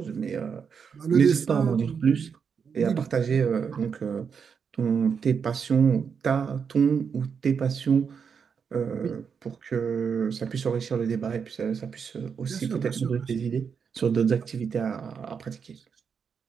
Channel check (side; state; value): left; quieter; 6.4 dB